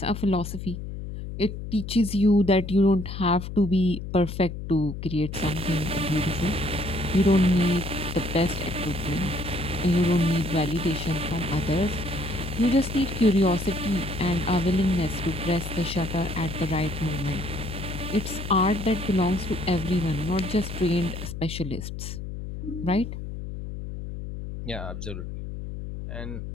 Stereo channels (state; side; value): noise; left; hum, 8 dB below the sound